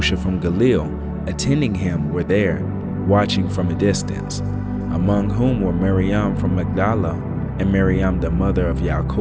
from Galilee, attending him, were there, watching from a distance, among whom were Miriam from Magdala, and Miriam the mother of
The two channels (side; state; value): both; identical; correlation 1.00